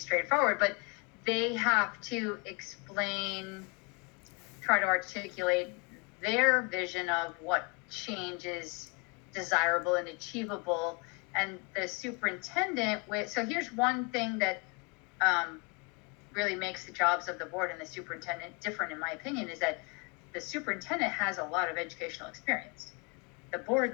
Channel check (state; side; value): quieter; right; 32.2 dB